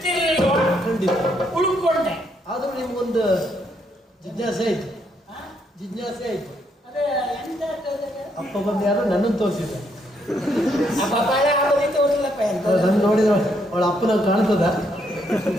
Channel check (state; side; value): normal; both; correlation 0.74